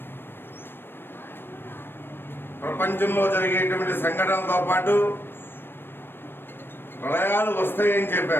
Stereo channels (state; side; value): late; right; 0.10 ms